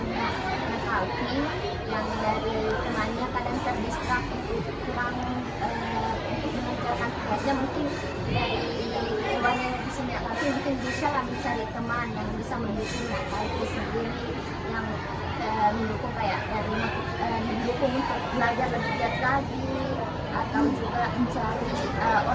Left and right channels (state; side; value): identical; both; correlation 1.00